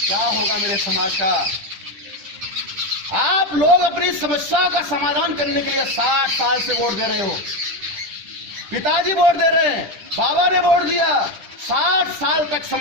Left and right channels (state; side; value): late; left; 10 ms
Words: क्या होगा मेरे समाज का? आप लोग अपनी समस्या का समाधान करने के लिए 60 साल से वोट दे रहे हो। पिताजी वोट दे रहे हैं, बाबा ने वोट दिया, 60 साल तक